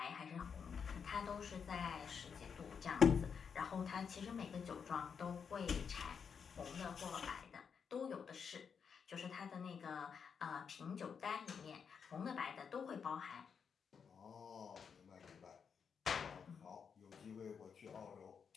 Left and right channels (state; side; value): quieter; right; 6.5 dB